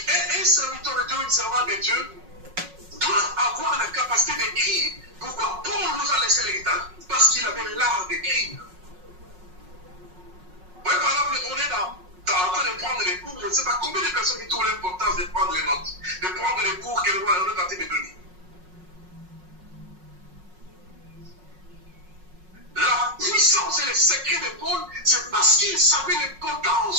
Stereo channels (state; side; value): late; left; 5.5 ms